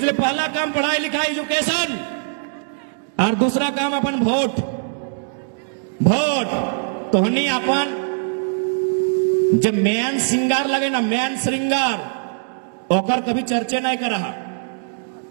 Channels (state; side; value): silent; left; digital silence